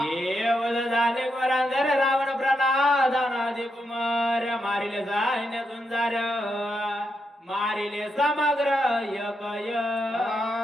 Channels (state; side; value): normal; both; correlation 0.83